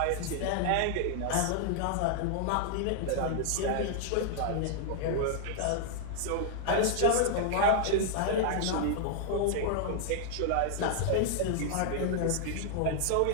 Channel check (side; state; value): both; different; correlation -0.01